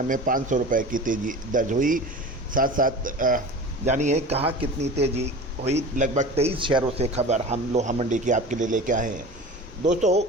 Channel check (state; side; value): normal; both; correlation 0.36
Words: में 500 रुपये की तेज़ी दर्ज हुई। साथ साथ जानिए कहाँ कितनी तेज़ी हुई। लगभग 23 शहरों से खबर हम लोहा मंडी की आपके लिए लेके आए हैं। दोस्तों